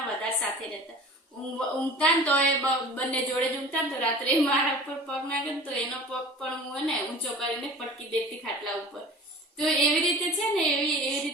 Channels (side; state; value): both; normal; correlation 0.40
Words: વધારે સાથે રહેતા. ઊંઘતા ને તો એ બંને જોડે જ ઊંઘતા ને તો રાત્રે મારા ઉપર પગ નાખે ને તો એનો પગ પણ હું ને ઊંચો કરીને પટકી દેતી ખાટલા ઉપર. તો એવી રીતે છે ને એવી